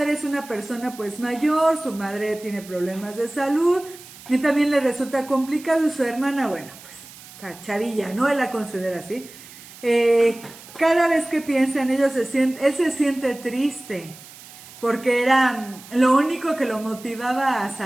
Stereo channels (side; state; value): right; noise; hiss, 19 dB below the sound